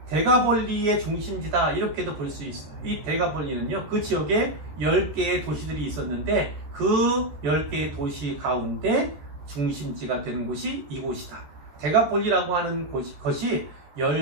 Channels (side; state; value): left; late; 13 ms